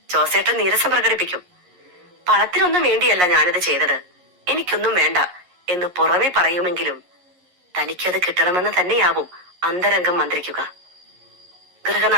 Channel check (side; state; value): left; late; 11 ms